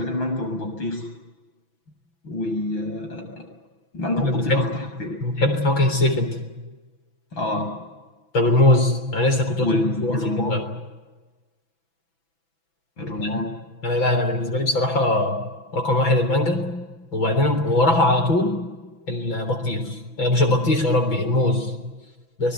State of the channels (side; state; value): right; late; 6.0 ms